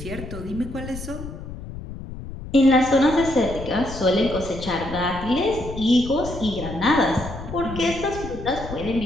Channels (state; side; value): noise; left; rumble, 11 dB below the sound